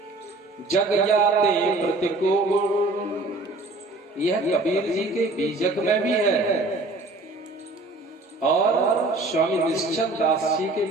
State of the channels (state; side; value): quieter; left; 3.1 dB